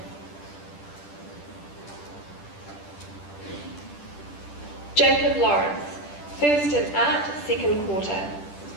Jacob Lawrence, first in art, second quarter.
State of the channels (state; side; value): late; right; 10 ms